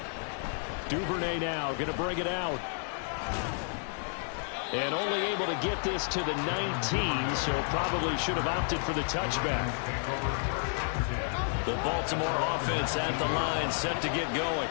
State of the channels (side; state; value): right; silent; 57 dB below the other